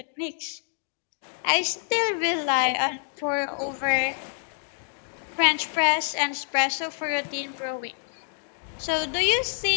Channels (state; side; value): silent; right; digital silence